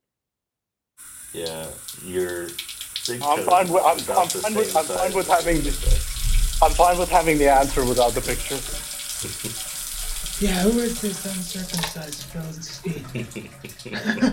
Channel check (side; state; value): both; identical; correlation 1.00